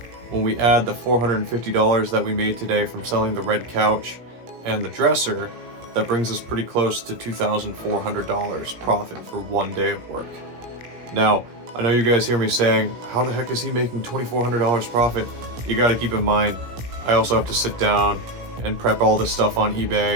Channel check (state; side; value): late; left; 17 ms